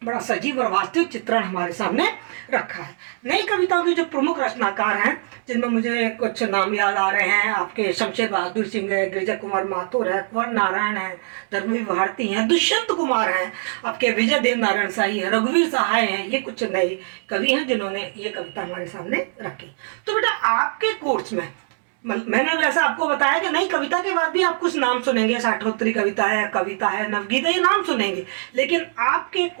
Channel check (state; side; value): silent; left; digital silence